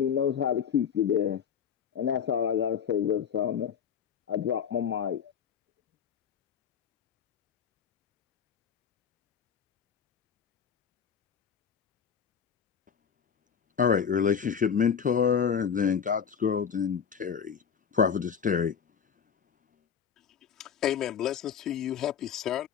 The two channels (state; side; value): quieter; right; 7.5 dB